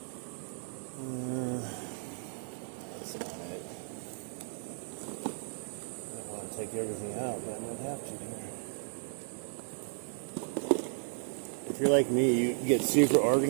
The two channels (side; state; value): left; silent; 55 dB below the other